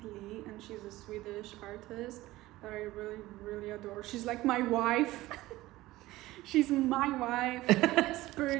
Lee, and she's a Swedish artist that I really, really adore. She's like my wife. She's my wife,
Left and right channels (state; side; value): quieter; left; 17.5 dB